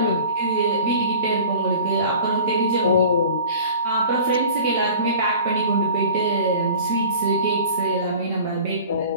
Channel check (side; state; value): both; inverted; correlation -0.42